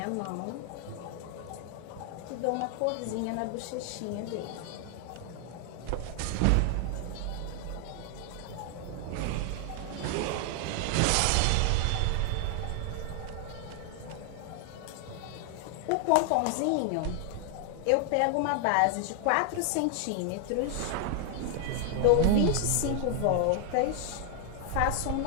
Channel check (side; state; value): both; different; correlation 0.00